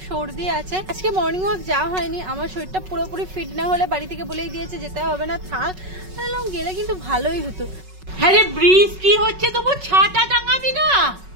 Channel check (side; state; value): left; late; 5.4 ms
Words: সর্দি আছে। আজকে মর্নিং ওয়াক যাওয়া হয়নি, আমার শরীরটা পুরোপুরি ফিট না হলে বাড়ি থেকে বলেই দিয়েছে যেতে হবে না, থাক। গেলে কিন্তু ভালোই হতো। হ্যাঁ রে, বৃষ্টি হচ্ছে, তবু ছাতা টাঙাবি না?